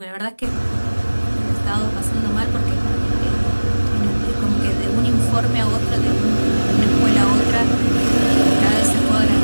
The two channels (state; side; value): inverted; both; correlation -1.00